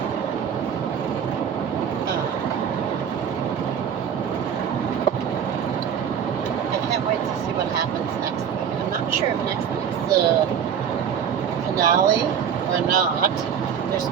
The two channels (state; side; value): quieter; left; 8.1 dB